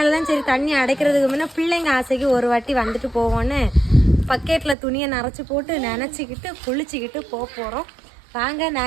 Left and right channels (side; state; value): left; drops out; at 4.8 s